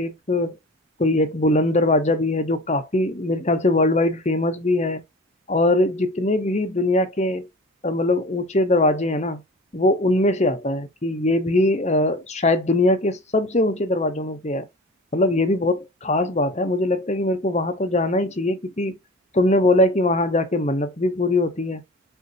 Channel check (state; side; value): normal; both; correlation 0.38